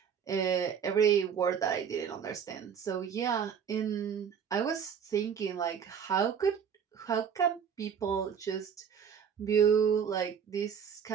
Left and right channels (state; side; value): quieter; left; 7.4 dB